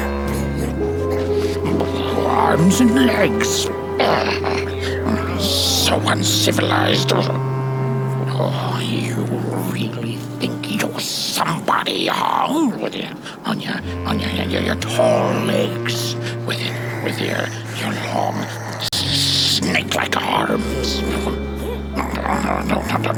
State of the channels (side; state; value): both; identical; correlation 1.00